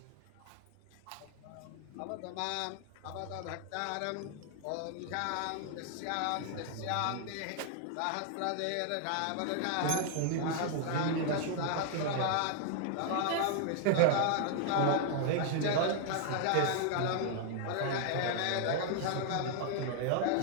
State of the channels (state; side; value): different; both; correlation 0.00